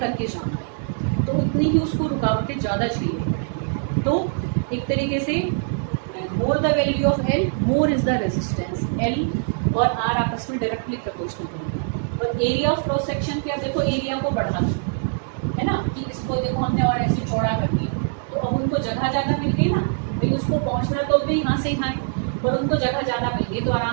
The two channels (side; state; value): left; silent; digital silence